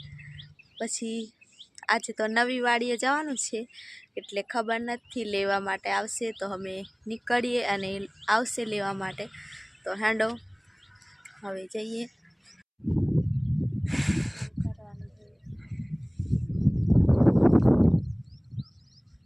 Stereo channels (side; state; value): both; identical; correlation 1.00